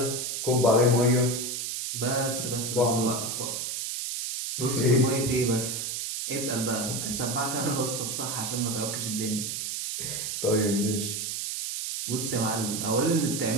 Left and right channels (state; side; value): noise; right; hiss, 3 dB below the sound